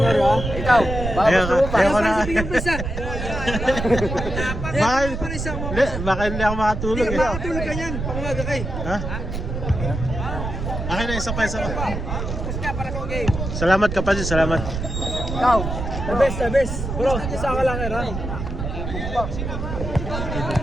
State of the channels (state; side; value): noise; right; rumble, 5 dB below the sound